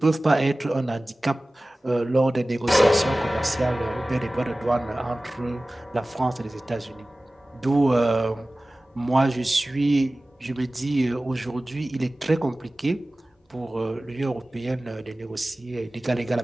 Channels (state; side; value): normal; both; correlation 0.97